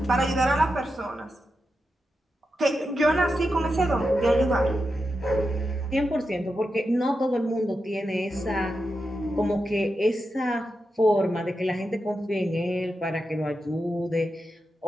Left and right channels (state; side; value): normal; both; correlation 0.88